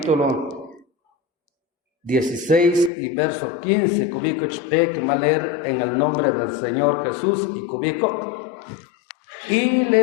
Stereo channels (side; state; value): right; drops out; at 2.9 s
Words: 16 y verso 15, cubierto que va a leer en el nombre del Señor Jesús y cubierto. Y